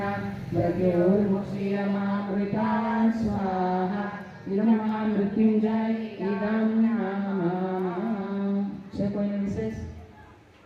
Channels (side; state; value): both; identical; correlation 1.00